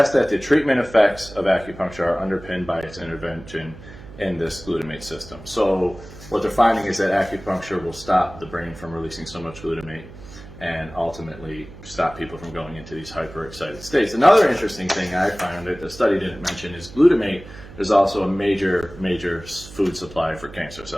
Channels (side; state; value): right; noise; hum, 17 dB below the sound